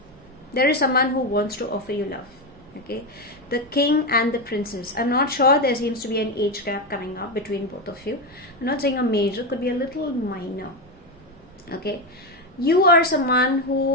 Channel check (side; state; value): right; noise; rumble, 28 dB below the sound